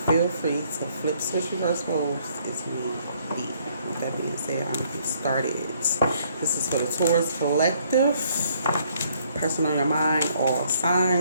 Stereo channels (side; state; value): both; inverted; correlation -0.66